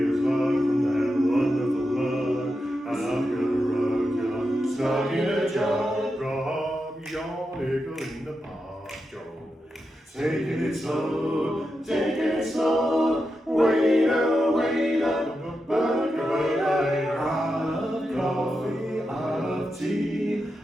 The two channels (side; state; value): both; normal; correlation 0.88